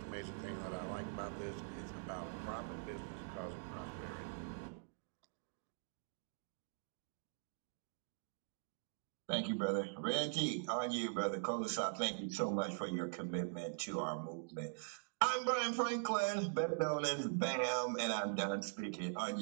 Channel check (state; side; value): silent; left; digital silence